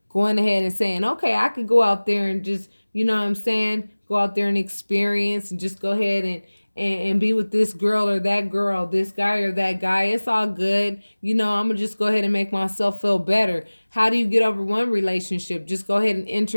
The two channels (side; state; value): both; inverted; correlation -1.00